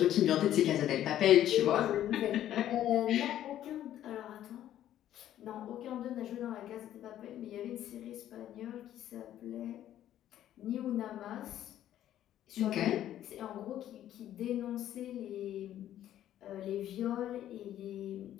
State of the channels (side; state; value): right; quieter; 11.9 dB